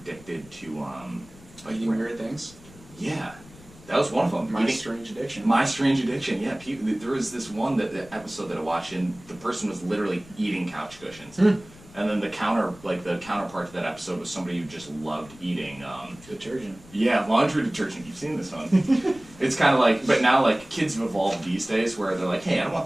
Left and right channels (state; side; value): noise; left; rumble, 22 dB below the sound